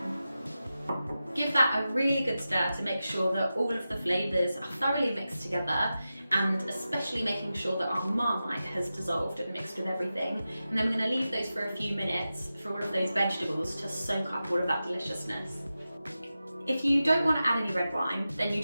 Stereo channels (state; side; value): inverted; both; correlation -0.93